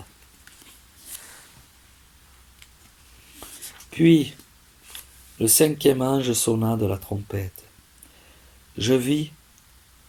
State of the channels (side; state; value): both; identical; correlation 1.00